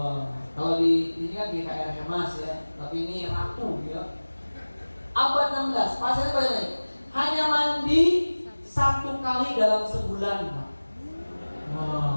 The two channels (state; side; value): inverted; both; correlation -1.00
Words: kalau di ini kan GKR Hemas ya, tapi ini ratu ya. Abad 16, pasirnya bagaimana? Hanya mandi 1 kali dalam sebulan, Pak.